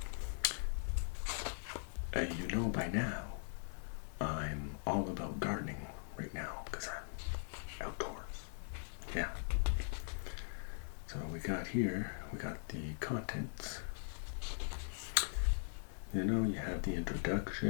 you know by now I'm all about gardening right now because I'm outdoors. Yeah. So we got the contents. You know, you have the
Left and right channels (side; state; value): right; silent; digital silence